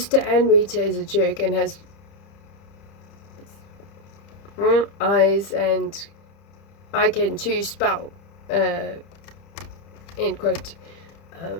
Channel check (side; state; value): right; late; 30 ms